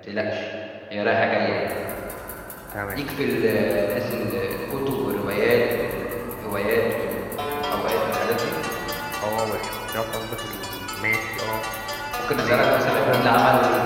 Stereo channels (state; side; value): identical; both; correlation 1.00